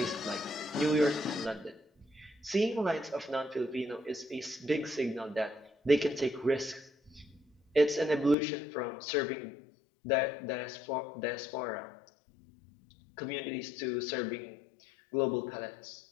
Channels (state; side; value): drops out; right; at 8.3 s